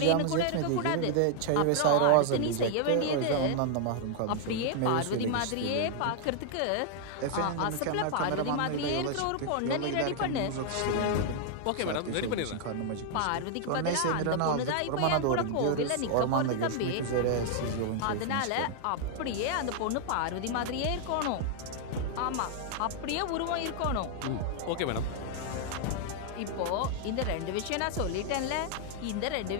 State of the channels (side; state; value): both; different; correlation 0.00